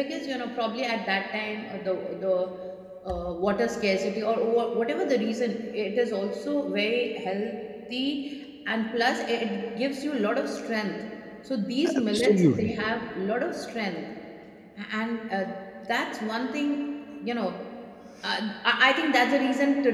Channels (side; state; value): both; identical; correlation 1.00